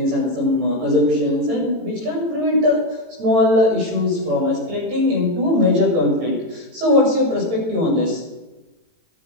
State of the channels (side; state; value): left; late; 18 ms